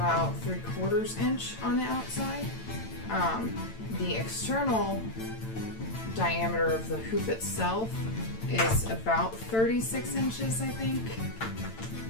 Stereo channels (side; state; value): right; late; 8.9 ms